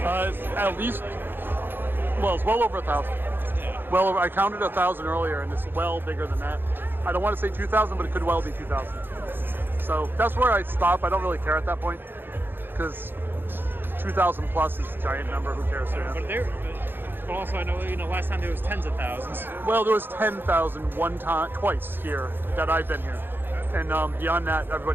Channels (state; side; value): late; left; 0.099 ms